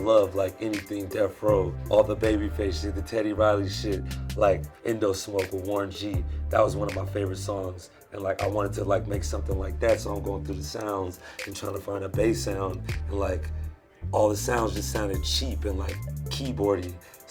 like anything Death Row, all the Babyface shit, the Teddy Riley shit, like Indo Smoke with Warren G. That was one of my favorite songs, and like I wanted to like make something like that, so I'm going through the sounds and trying to find a bass sound, and like all the sounds just sounded cheap and like keyboardy,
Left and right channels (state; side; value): identical; both; correlation 1.00